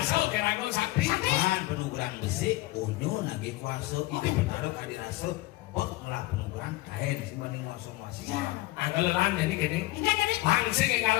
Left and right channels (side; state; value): right; quieter; 19.4 dB